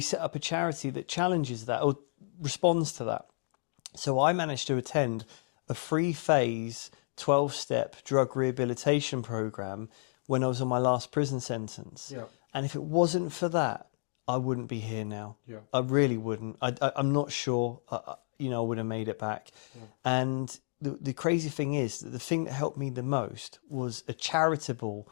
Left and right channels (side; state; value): right; silent; digital silence